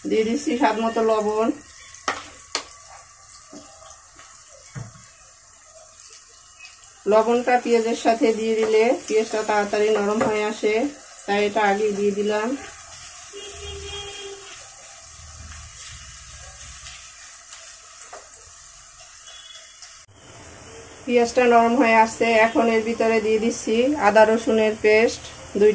দিয়ে দিচ্ছি স্বাদ মতো লবণ। লবণটা পেঁয়াজের সাথে দিয়ে দিলে পেঁয়াজটা তাড়াতাড়ি নরম হয়ে আসে, তাই এটা আগে দিয়ে দিলাম। পেঁয়াজটা নরম হয়ে আসছে। এখন এর ভিতরে দিয়ে দিচ্ছি আদা রসুনের পেস্ট 2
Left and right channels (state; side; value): identical; both; correlation 1.00